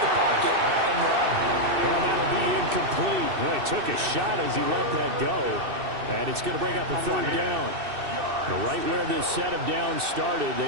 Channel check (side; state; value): left; late; 2.6 ms